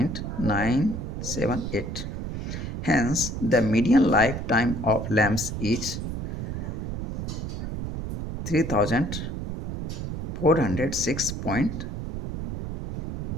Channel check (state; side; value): noise; right; rumble, 5 dB below the sound